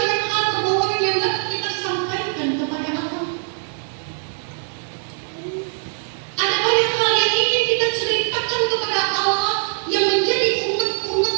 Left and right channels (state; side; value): silent; left; digital silence